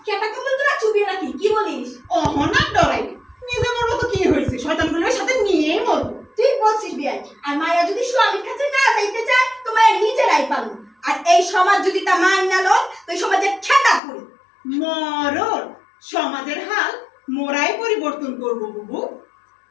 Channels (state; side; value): drops out; right; at 14.0 s